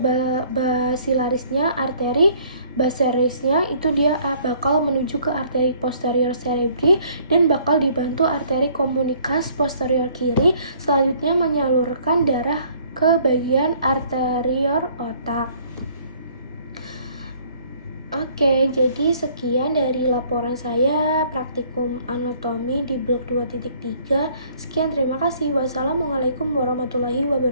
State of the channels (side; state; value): both; inverted; correlation -0.59